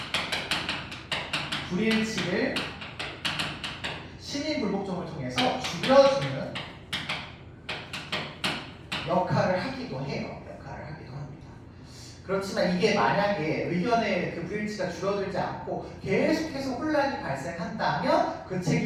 불일치를 시민 불복종을 통해서 줄여주는 역할을 하기도 해요. 그렇지만 이게 만약에 의견의 그 불일치가 줄어들지 않고 계속해서 혼란이 발생한다면 그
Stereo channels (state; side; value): identical; both; correlation 1.00